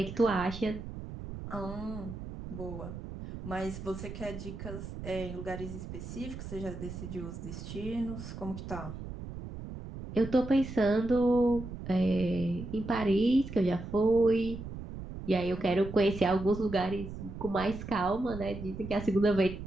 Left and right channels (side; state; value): right; noise; rumble, 10 dB below the sound